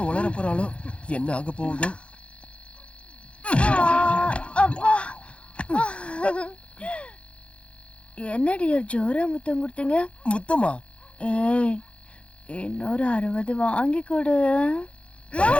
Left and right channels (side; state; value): right; late; 0.060 ms